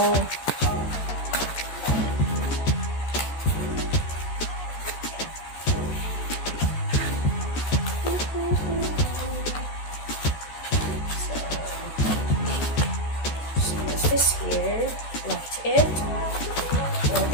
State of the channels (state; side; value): late; right; 14 ms